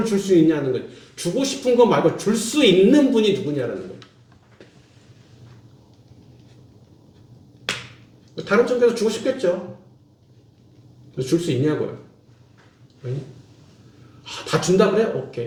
줄 수 있냐는 거. 주고 싶은 거 말고 줄 수 있는 분이 누구냐라는 거예요. 다른 쪽에서 주고 싶겠죠. 줄 수 있냐고요. 다 준다 그래?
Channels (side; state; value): both; identical; correlation 1.00